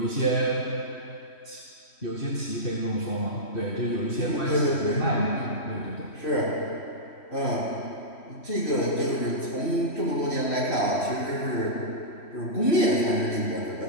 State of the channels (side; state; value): right; late; 3.1 ms